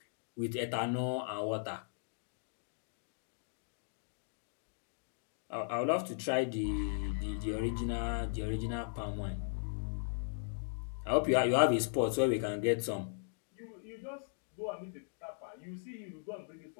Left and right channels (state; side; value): silent; right; digital silence